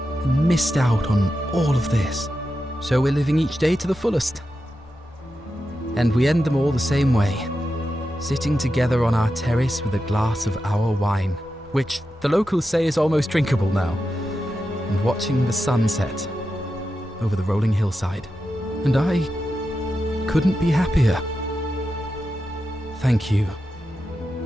missed out on all of this. So we're living each day to the fullest. And we end them all the same way, sitting together on our terrace with a glass of our wine, which the locals say is almost drinkable now, and watching the sunset over the rolling hillside. And I couldn't be happier. Thank you.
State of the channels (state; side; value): normal; both; correlation 0.89